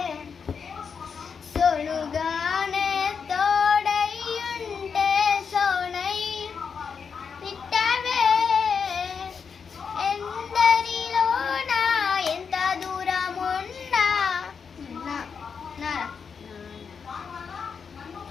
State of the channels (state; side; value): quieter; right; 6.1 dB